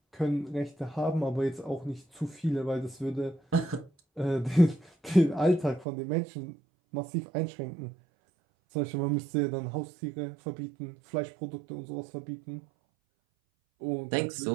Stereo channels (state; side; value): drops out; left; at 5.9 s